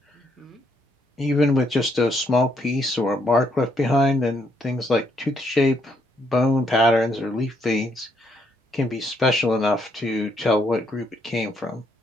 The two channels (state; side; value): normal; both; correlation 0.73